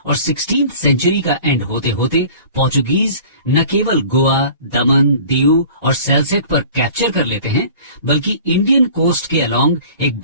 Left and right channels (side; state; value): both; inverted; correlation -0.45